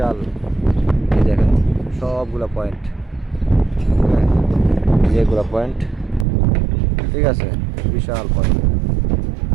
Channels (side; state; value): left; drops out; at 6.2 s